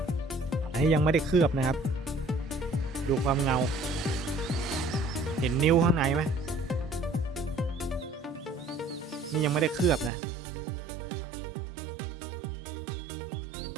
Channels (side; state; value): left; drops out; at 10.1 s